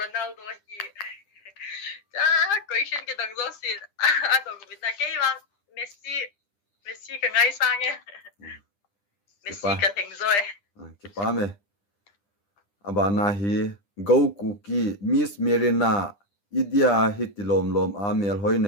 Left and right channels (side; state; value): right; late; 10 ms